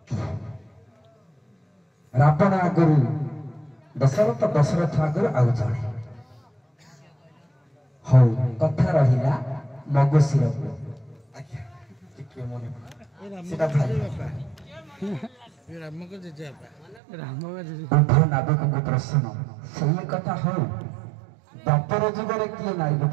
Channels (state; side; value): drops out; left; at 17.0 s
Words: ରାବଣ ଆଗରୁ ଦଶରଥ, ଦଶରଥ ଆଗରୁ ଆଉ ଜଣେ। ହଉ କଥା ରହିଲା ମଗୁଶିରକୁ। ସେଟା ଭାଇ ଉଭୟ ନାବିକଙ୍କ ପ୍ରଶ୍ନ ସେଇ କଥା। ହଉ ଦ୍ୱାପର ଯୁଗରେ କିଏ ନାରୀ ରୂପ